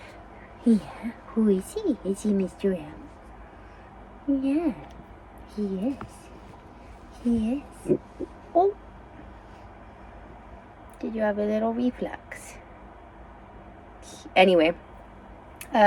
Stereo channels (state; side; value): identical; both; correlation 1.00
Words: Yeah, who is he? Is he Mr. M? Yeah, he is. He is. Oh. Did you have a little reflux? Anyway,